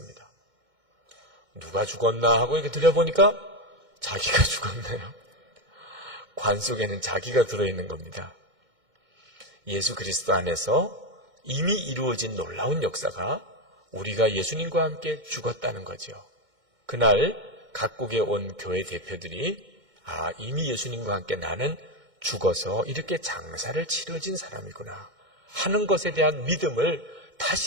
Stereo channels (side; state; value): left; late; 2.1 ms